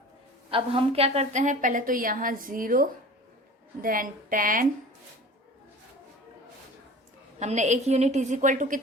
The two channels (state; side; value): normal; both; correlation 0.39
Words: अब हम क्या करते हैं, पहले तो यहाँ 0 देन 10। हमने एक यूनिट इज इक्वल टू